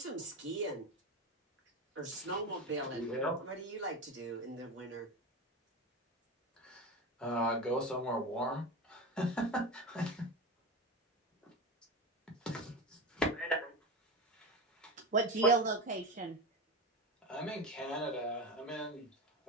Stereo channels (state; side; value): normal; both; correlation 0.23